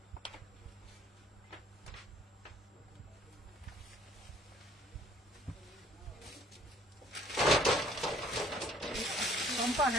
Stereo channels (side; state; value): both; normal; correlation 0.58